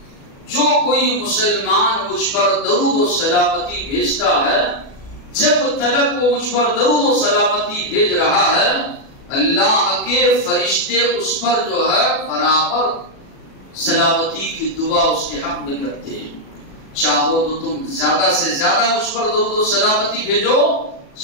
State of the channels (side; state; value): right; late; 36 ms